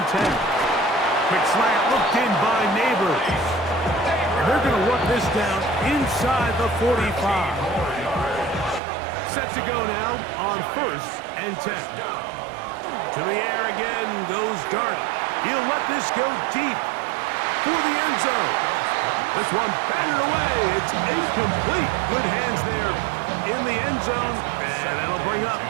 10. Quick slant looked in by Neighbors. And they're going to work this down inside the 45. Set to go now on 1st and 10. To the air again goes Dart. He'll let this go deep for the end zone. This one batted away. It's incomplete. Good hands there in the end zone. And that'll bring up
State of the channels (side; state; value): left; drops out; at 8.8 s